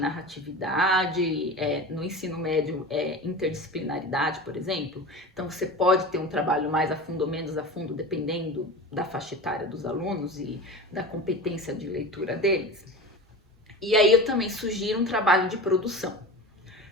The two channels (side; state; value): both; normal; correlation 0.30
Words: no ensino médio, interdisciplinaridade, por exemplo. Então, você pode ter um trabalho mais a fundo ou menos a fundo, dependendo da faixa etária dos alunos e da competência de leitura deles. E aí eu também sugiro um trabalho de produção,